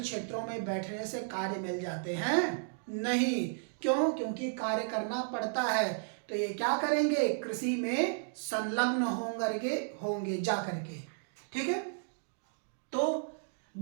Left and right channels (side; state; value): left; silent; digital silence